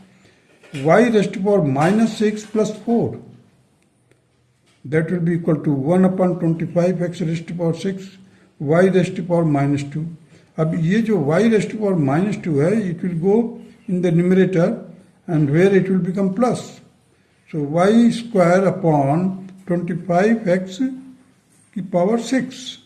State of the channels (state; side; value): identical; both; correlation 1.00